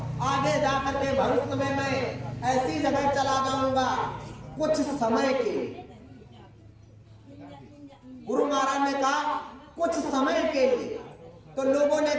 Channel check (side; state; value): both; identical; correlation 1.00